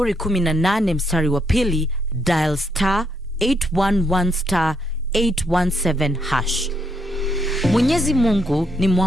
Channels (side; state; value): both; normal; correlation 0.75